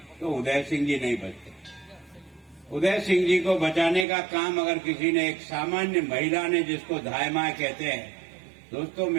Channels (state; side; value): drops out; left; at 4.0 s